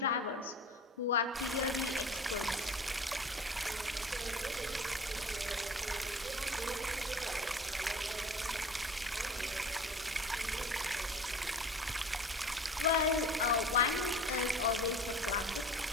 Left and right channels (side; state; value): both; normal; correlation 0.42